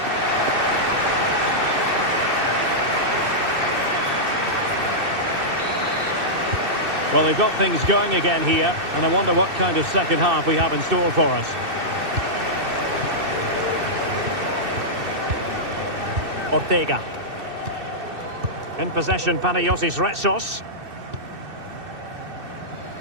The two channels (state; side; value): late; left; 2.6 ms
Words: Well, they've got things going again here, and I wonder what kind of second half we have in store for us. Ortega. In possession, Panagiotis Retsos.